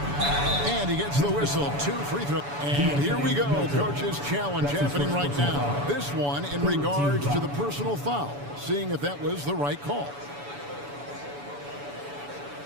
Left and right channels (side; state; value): left; late; 7.0 ms